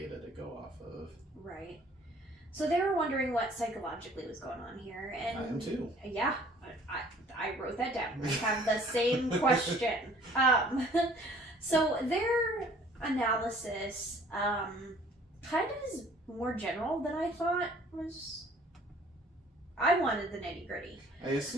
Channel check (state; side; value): normal; both; correlation 0.54